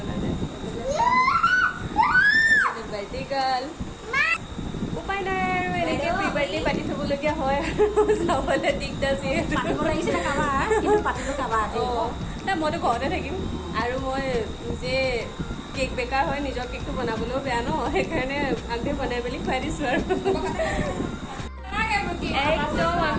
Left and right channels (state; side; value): identical; both; correlation 1.00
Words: নাই বাৰ্থডে গাৰ্ল উপায় নাই আৰু এনেকে প্ৰি বাৰ্থডে পাতি থবলগীয়া হয় আৰু চাবলৈ দিগদাৰ যিহেতু নাই মইতো ঘৰতে থাকিম আৰু মই নিজে কেক বেকাৰ হয় নিজৰ কেকটো বনাবলৈও বেয়া ন সেইকাৰণে আগে বনাই মেলি খুৱাই দিছোঁ আৰু একদম